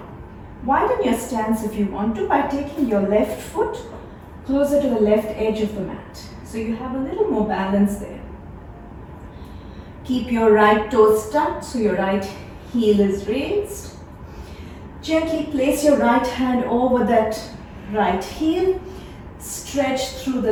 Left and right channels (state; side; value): identical; both; correlation 1.00